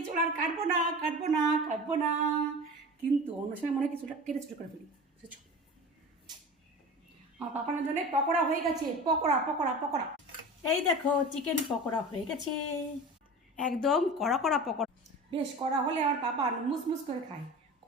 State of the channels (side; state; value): both; normal; correlation 0.34